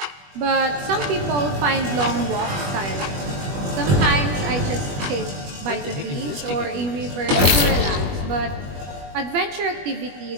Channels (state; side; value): late; left; 21 ms